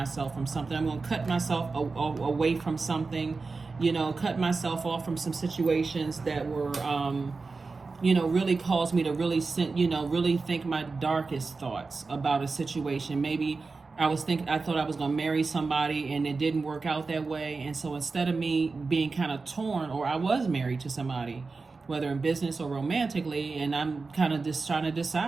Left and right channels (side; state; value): left; quieter; 4.1 dB